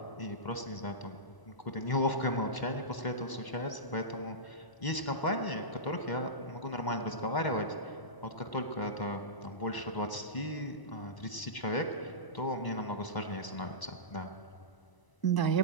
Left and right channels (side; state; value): right; late; 1.0 ms